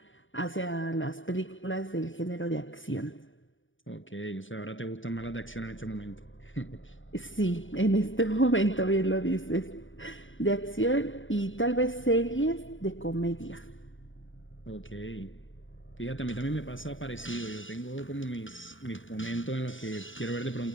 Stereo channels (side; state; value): right; late; 0.57 ms